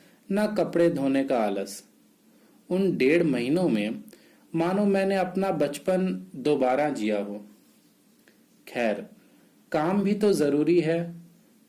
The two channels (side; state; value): both; identical; correlation 1.00